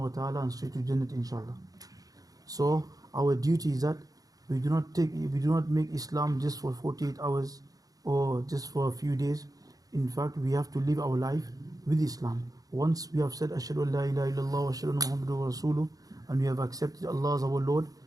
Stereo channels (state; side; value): late; left; 0.18 ms